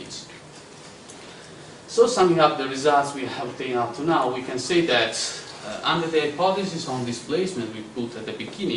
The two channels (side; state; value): both; identical; correlation 1.00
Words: So summing up the results we have obtained up to now, we can say that under the hypothesis on displacement we put at the